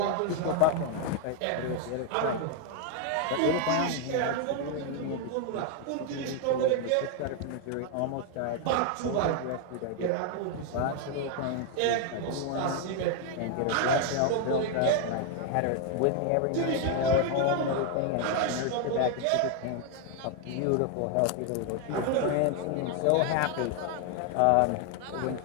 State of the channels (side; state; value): both; different; correlation 0.00